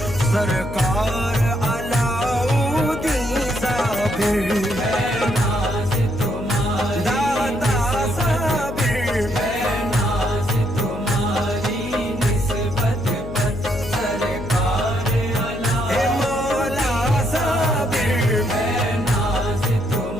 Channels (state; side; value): noise; left; hum, 10 dB below the sound